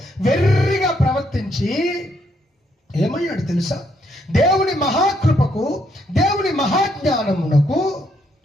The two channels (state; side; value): normal; both; correlation 0.73